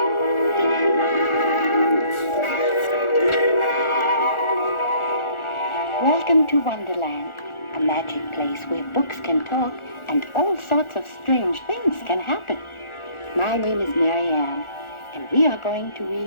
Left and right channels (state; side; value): late; right; 1.4 ms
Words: Welcome to Wonderland, a magic place where books can talk and all sorts of strange things can happen. My name is Mary Ann, and we are going to